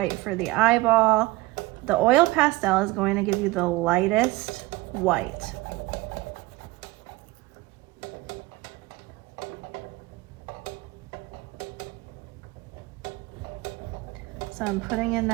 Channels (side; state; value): left; quieter; 20.4 dB